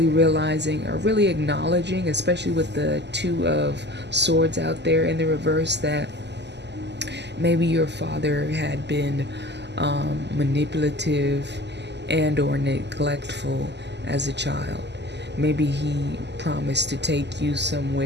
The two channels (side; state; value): left; late; 0.50 ms